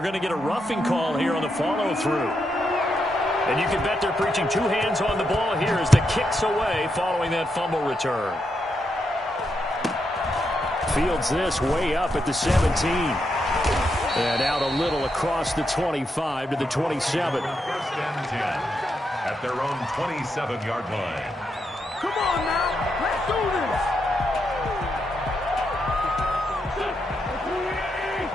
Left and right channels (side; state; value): both; normal; correlation 0.82